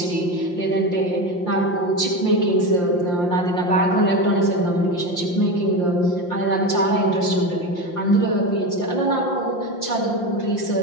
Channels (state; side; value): late; right; 5.7 ms